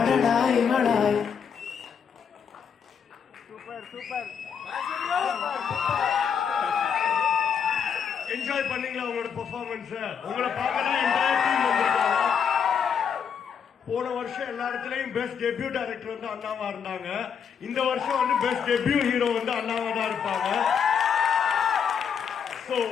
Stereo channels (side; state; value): right; quieter; 7.1 dB